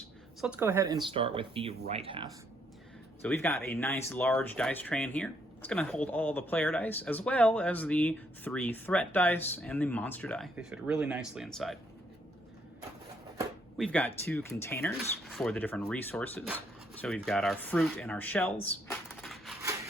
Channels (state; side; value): normal; both; correlation 0.71